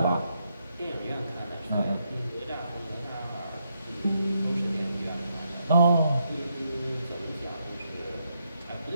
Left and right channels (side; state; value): both; inverted; correlation -0.79